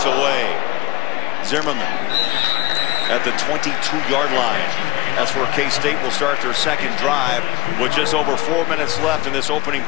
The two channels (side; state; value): right; quieter; 17.7 dB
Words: away. Zimmerman at the 22-yard line. That's where K-State will start their 2nd drive with just over 4 minutes left in this opening